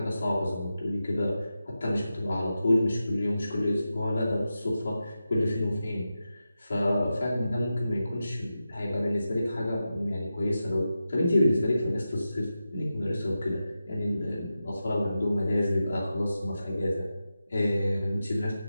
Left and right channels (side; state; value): both; inverted; correlation -0.91